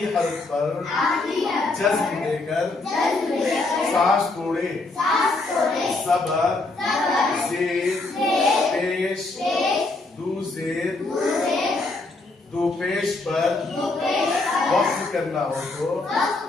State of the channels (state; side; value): quieter; right; 3.3 dB